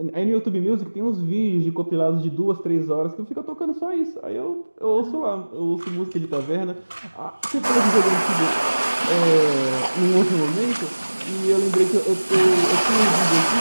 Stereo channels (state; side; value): inverted; both; correlation -1.00